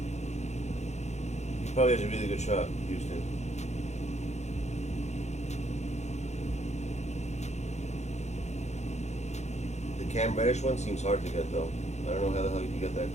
He probably has a really good shot, Houston. The Cam Reddish one seems hard to get though. I don't know how the hell you can get that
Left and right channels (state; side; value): late; right; 0.33 ms